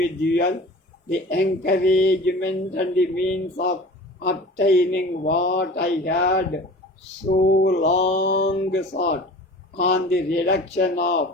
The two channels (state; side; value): normal; both; correlation 0.40